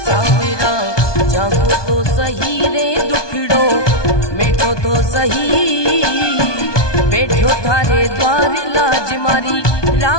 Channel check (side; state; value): right; late; 1.2 ms